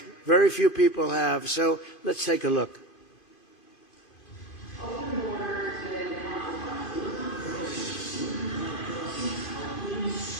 very few people have. So let's take a look.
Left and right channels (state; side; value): late; right; 2.5 ms